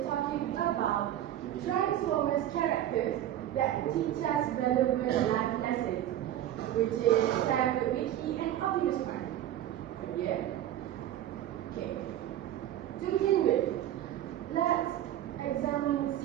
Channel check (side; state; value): left; quieter; 12.0 dB